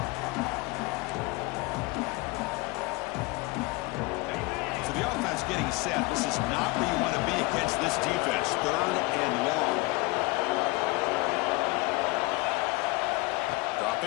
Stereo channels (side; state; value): right; quieter; 23.8 dB